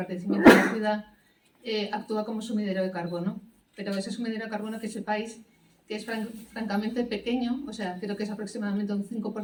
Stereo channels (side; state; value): both; identical; correlation 1.00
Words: de la ciudad, actúa como sumidero de carbono, pero ese sumidero de carbono, que sepáis que es francamente pequeño, o sea, creo que es aproximadamente un